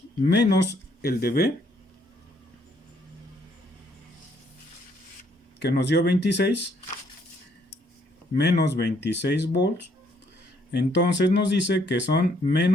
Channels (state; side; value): normal; both; correlation 0.68